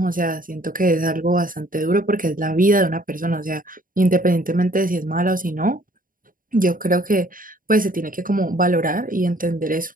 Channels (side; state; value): left; late; 0.40 ms